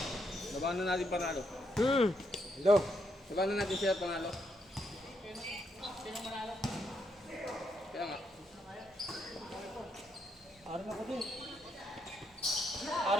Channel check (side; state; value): both; normal; correlation 0.77